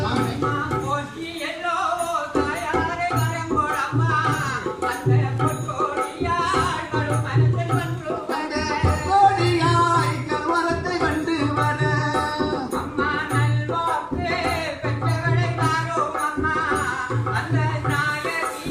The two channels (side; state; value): both; identical; correlation 1.00